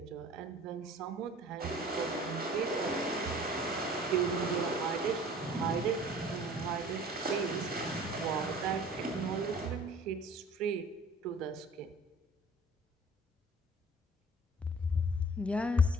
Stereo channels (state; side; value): normal; both; correlation 0.48